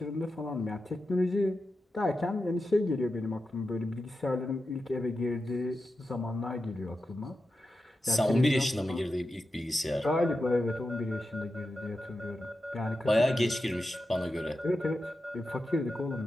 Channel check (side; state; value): both; normal; correlation 0.90